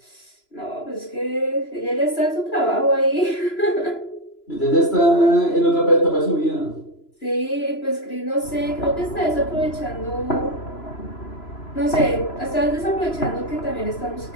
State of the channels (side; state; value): right; late; 3.0 ms